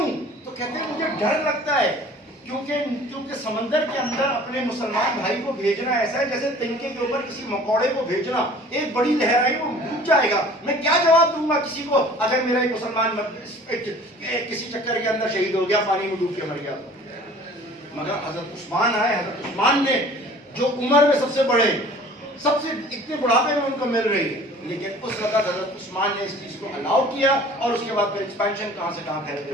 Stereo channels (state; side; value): normal; both; correlation 0.48